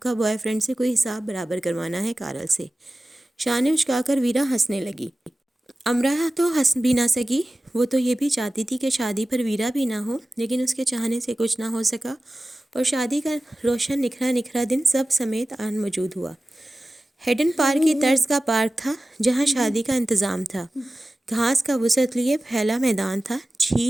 بوائے فرینڈ سے کوئی حساب برابر کروانا ہے کارل سے۔ شانے اچکا کر ویرا ہنسنے لگی۔ امرا تو ہنس بھی نہ سکی، وہ تو یہ بھی چاہتی تھی کہ شادی پر ویرا بھی نہ ہو، لیکن اس کے چاہنے سے کچھ نہ ہو سکا اور شادی کا روشن نکھرا نکھرا دن سب سمیت آن موجود ہوا۔ ہیڈن پارک کی طرز کا پارک تھا جہاں شادی کا انتظام تھا۔ گھاس کا وسعت لیے پھیلا میدان تھا،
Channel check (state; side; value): normal; both; correlation 0.96